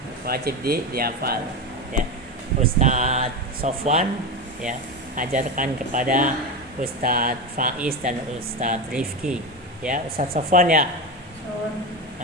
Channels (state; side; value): normal; both; correlation 0.19